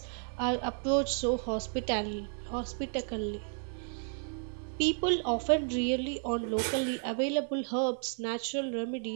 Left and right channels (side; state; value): left; silent; 56 dB below the other